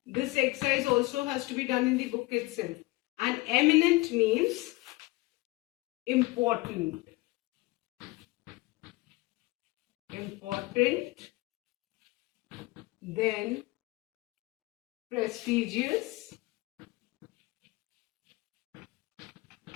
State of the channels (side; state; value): right; quieter; 21.4 dB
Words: This exercise also has to be done in the book itself. And eminent means important. Important. Then prestigious.